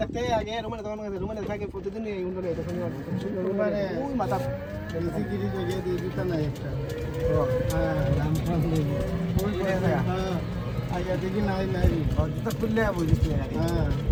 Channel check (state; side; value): identical; both; correlation 1.00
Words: থাকতে আগে রুমেনে থাকে প্রতিদিন এই উন্ডলে তখন রুমেনে ওই মাথা বেশি গিরি জায়গায় দিয়ে দিতা না একটা হ্যাঁ দাম কম দেবো ওই হ্যাঁ আগে দেখি নাই জুতা খুললে বুঝিস হ্যাঁ